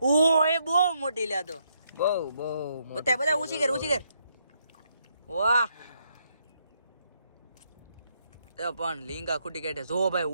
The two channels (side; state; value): both; inverted; correlation -0.76